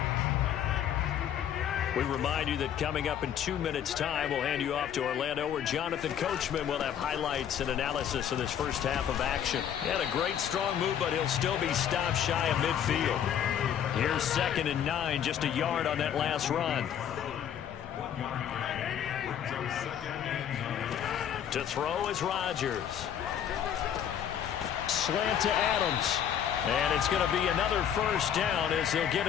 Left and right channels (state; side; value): quieter; right; 9.3 dB